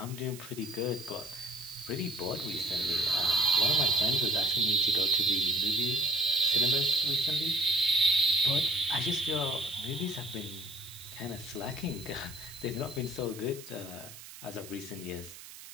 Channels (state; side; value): noise; right; hiss, 16 dB below the sound